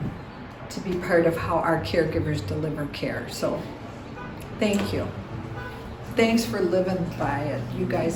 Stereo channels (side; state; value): both; identical; correlation 1.00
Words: to be part of how our caregivers deliver care. So thank you. Thanks for living by it. You